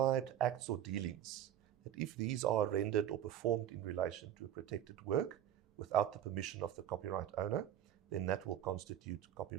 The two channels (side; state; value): left; quieter; 10.8 dB